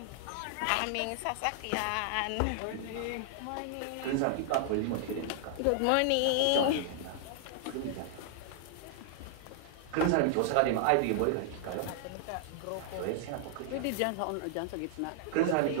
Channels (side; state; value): both; different; correlation -0.01